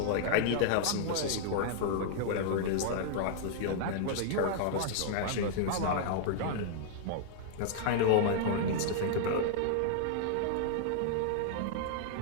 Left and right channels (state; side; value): different; both; correlation -0.01